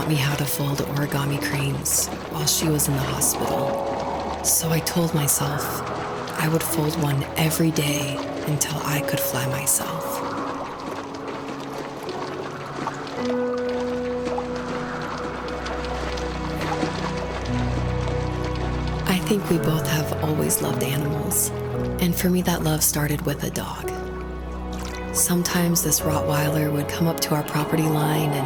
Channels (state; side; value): identical; both; correlation 1.00